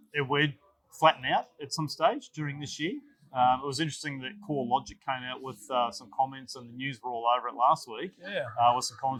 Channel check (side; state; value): both; identical; correlation 1.00